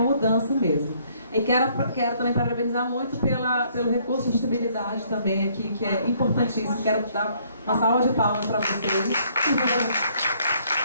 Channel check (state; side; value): inverted; both; correlation -0.65